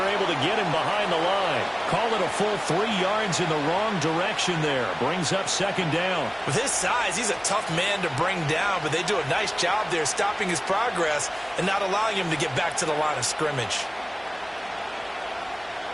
able to get him behind the line. Call it a full 3 yards in the wrong direction there. Brings up second down. With his size, he's a tough man to bring down, but they do a nice job there stopping his progress and not allowing him to get back to the line of scrimmage.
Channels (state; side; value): identical; both; correlation 1.00